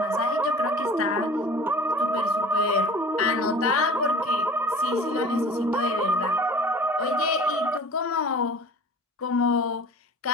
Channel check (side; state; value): both; normal; correlation 0.43